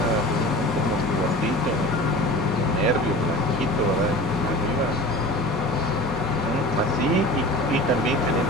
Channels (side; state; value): both; normal; correlation 0.38